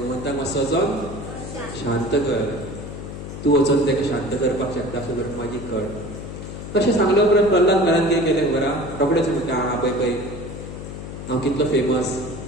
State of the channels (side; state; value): left; noise; hum, 9 dB below the sound